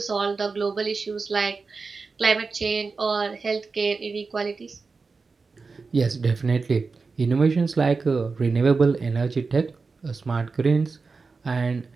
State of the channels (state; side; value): quieter; left; 4.4 dB